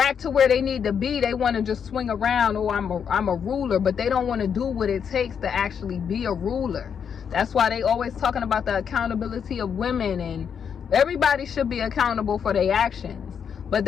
to where they need to be, they want to just swing around, oh, I'm a ruler, but they don't want to do what it takes to actually be a ruler. That's why they always talking about the accountability of women, and everybody should be accountable for their actions. But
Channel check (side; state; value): right; quieter; 7.4 dB